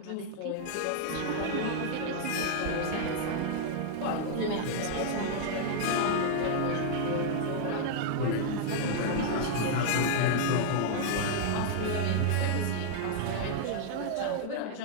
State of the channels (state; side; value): different; both; correlation -0.01